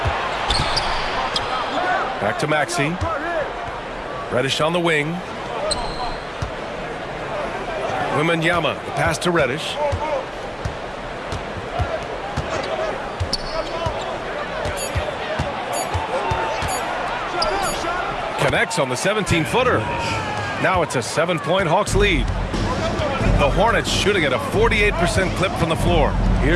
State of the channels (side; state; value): both; identical; correlation 1.00